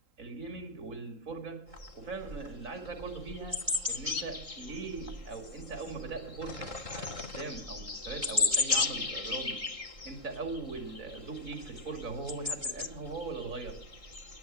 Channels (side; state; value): left; late; 3.8 ms